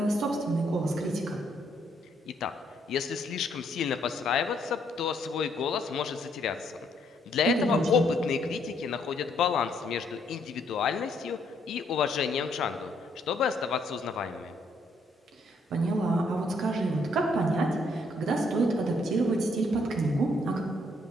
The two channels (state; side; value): normal; both; correlation 0.70